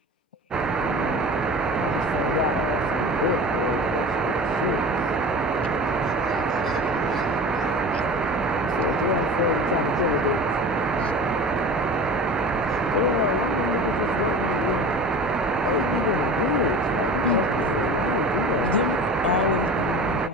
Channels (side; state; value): both; normal; correlation 0.35